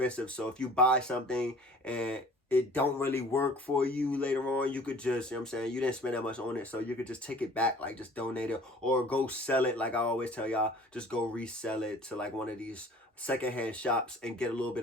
So if you buy something and it don't really work for you later on, you could just, you know what I'm saying, you didn't spend that much on it, so you could just take it back, like just donate it or go sell it. Like I always tell y'all, just go resell it to like one of these secondhand shops and get a little bit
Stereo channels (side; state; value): both; normal; correlation 0.49